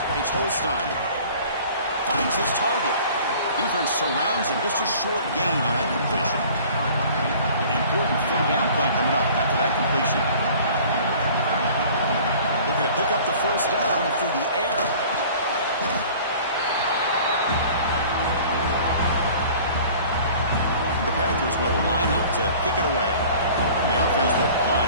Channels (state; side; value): inverted; both; correlation -0.47